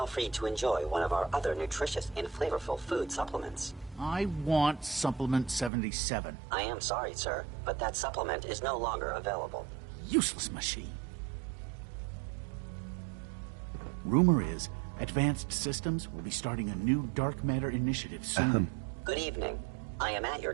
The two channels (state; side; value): drops out; left; at 5.7 s